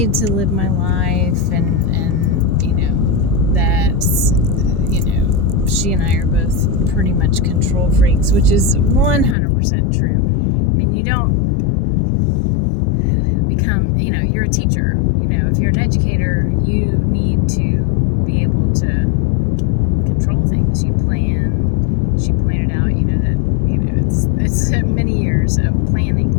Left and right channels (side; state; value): right; drops out; at 9.3 s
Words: to live my life and that, she and I are both pretty much control freaks, which is 100% true. I mean, you don't become, you're a teacher. If you're an educator, you need to be able to control things. You plan. She pointed out, that, it's many years of